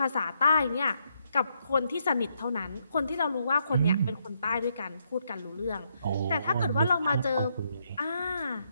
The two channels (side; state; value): both; inverted; correlation -0.77